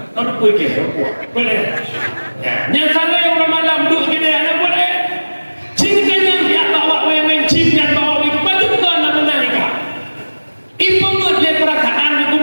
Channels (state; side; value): inverted; both; correlation -1.00